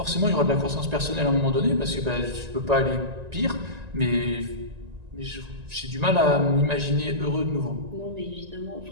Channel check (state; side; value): late; left; 1.9 ms